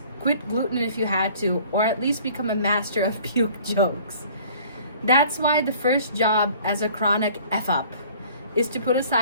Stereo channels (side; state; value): both; inverted; correlation -0.52